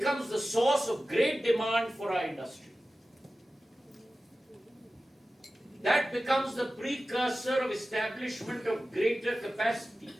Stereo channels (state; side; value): normal; both; correlation 0.95